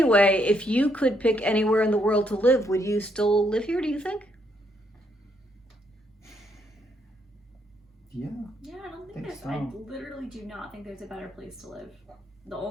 if you could pick anywhere in the world to live, would you still live here, do you think? Yeah. Yeah, I don't think Think there's. so. I literally do not think there's a better place to live. The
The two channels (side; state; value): both; normal; correlation 0.73